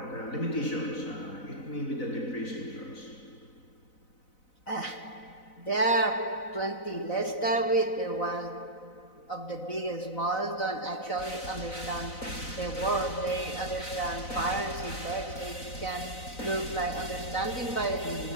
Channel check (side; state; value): right; late; 4.0 ms